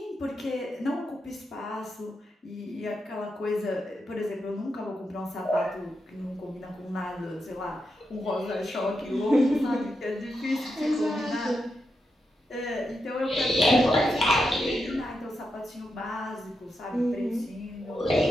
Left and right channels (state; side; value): normal; both; correlation 0.85